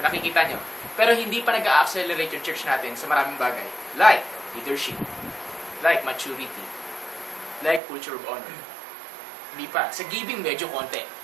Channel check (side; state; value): left; drops out; at 7.8 s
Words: nakikita nyo. Pero hindi pa nag-accelerate yung church natin sa maraming bagay. Like leadership. Like maturity. Like culture of honor. Hindi pa. Sa giving, medyo konti.